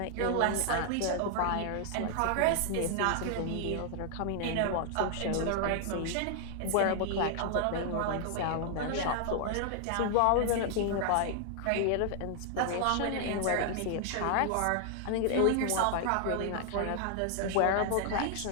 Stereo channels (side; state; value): both; different; correlation 0.00